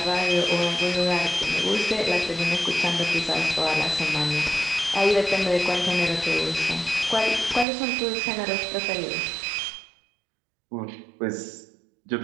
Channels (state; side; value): drops out; left; at 7.7 s